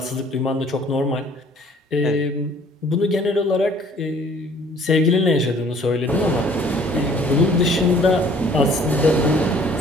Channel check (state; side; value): normal; both; correlation 0.56